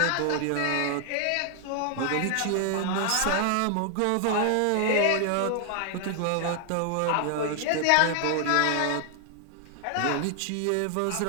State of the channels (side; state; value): both; different; correlation 0.00